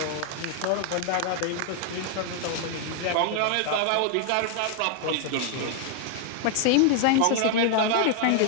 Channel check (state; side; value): different; both; correlation 0.00